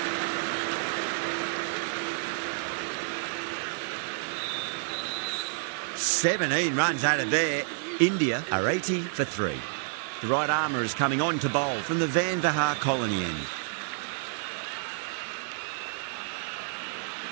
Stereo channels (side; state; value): left; silent; 58 dB below the other